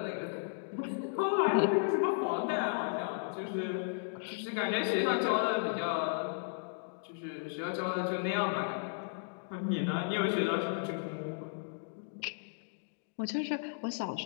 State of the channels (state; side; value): silent; right; digital silence